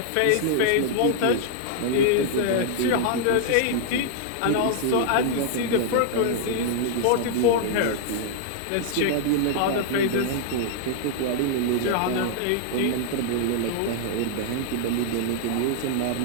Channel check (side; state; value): both; different; correlation -0.01